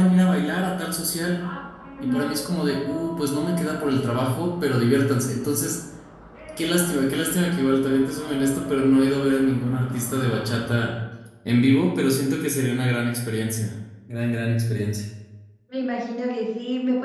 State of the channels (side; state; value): both; identical; correlation 1.00